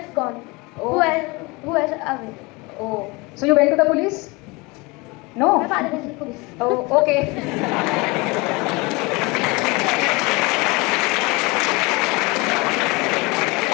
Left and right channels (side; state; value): right; quieter; 25.4 dB